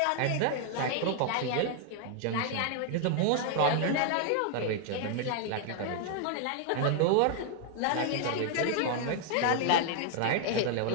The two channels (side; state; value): both; different; correlation 0.00